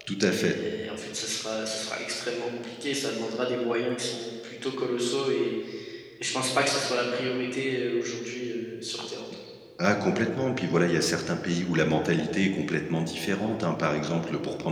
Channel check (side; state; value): both; identical; correlation 1.00